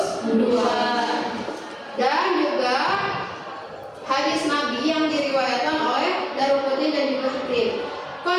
dan juga hadis Nabi yang diriwayatkan oleh Daruqutni dan juga Hakim.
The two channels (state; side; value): identical; both; correlation 1.00